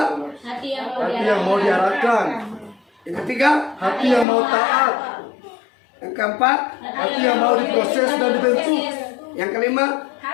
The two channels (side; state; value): right; drops out; at 4.2 s